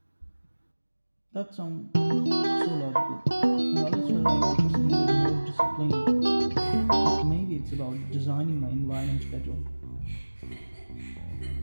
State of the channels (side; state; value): both; inverted; correlation -1.00